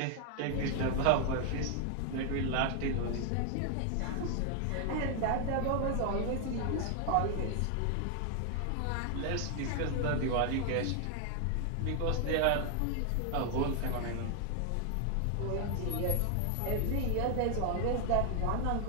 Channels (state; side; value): different; both; correlation 0.00